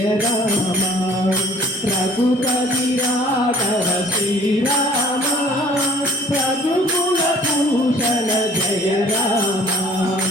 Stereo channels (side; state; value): both; normal; correlation 0.53